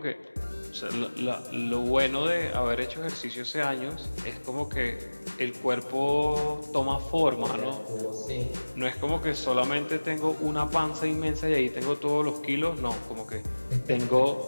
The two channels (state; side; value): inverted; both; correlation -1.00